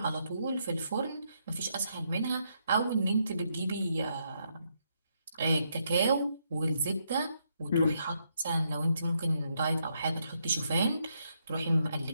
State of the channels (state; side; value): inverted; both; correlation -0.77